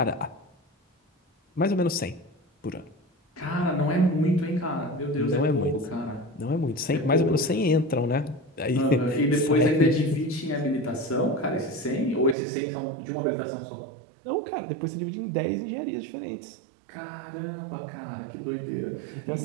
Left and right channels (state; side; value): drops out; left; at 12.4 s